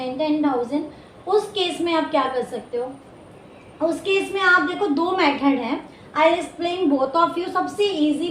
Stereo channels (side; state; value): both; identical; correlation 1.00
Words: 10,000। उस केस में आप क्या कर सकते हो, उस केस में आप देखो दो मेथड है, I explain both of you. सबसे